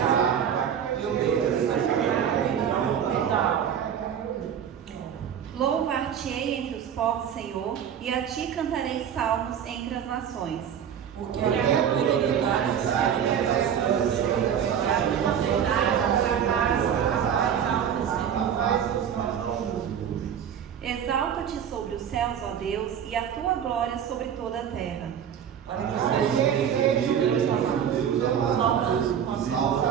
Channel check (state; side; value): quieter; left; 8.6 dB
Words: Louvar-te-ei entre os povos, Senhor, e a ti cantarei salmos entre as nações. Porque a tua fidelidade está Exalta-te sobre os céus, ó Deus, e a tua glória sobre toda a terra. Para que